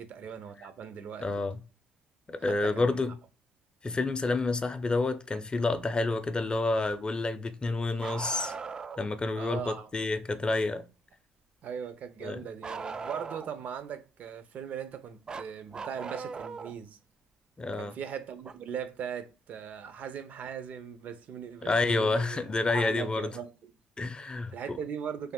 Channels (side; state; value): both; normal; correlation 0.81